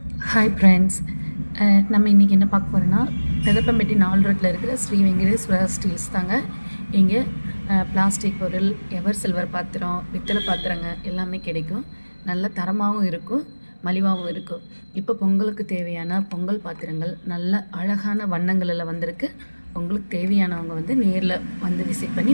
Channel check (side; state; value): both; inverted; correlation -1.00